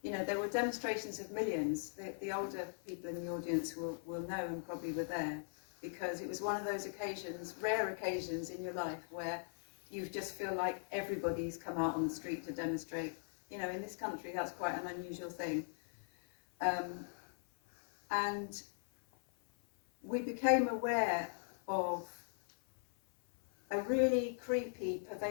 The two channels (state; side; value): silent; right; 51 dB below the other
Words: You know, there were demonstrations of millions. The older people in the audience will know and probably were there, because it was one of those occasions, rare occasions in your life, where you just feel like everybody's come out on the street to demonstrate. You know, in this country, that's quite an unusual thing. And we became aware of a really creepy,